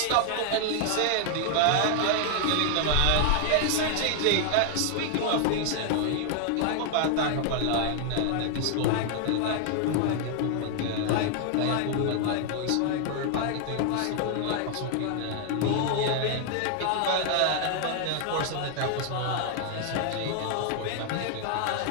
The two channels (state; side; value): different; both; correlation 0.00